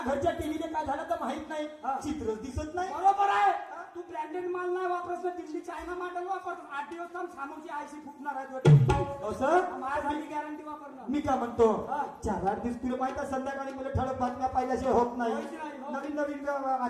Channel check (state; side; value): identical; both; correlation 1.00